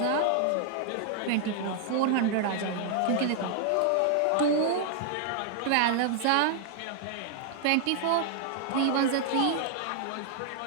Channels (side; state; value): both; different; correlation 0.00